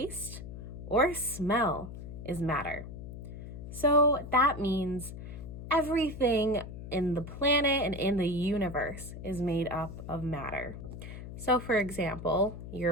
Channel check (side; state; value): left; noise; hum, 10 dB below the sound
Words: or smell is matter. So that means everything in the planet and in the universe is made up of matter. So for example, your